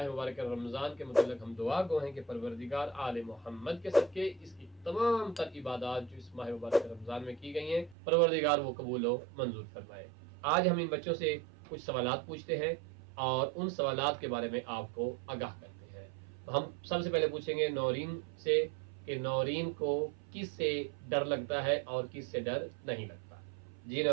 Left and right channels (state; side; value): drops out; left; at 8.0 s